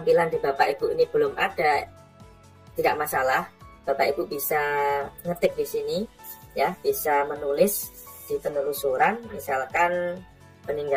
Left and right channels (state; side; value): identical; both; correlation 1.00